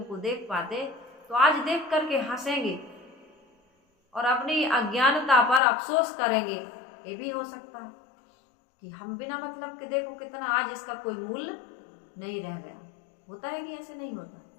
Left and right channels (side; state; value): right; drops out; at 5.6 s